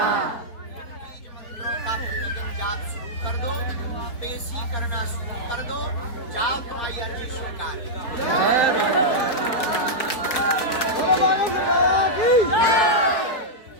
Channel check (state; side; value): late; right; 4.3 ms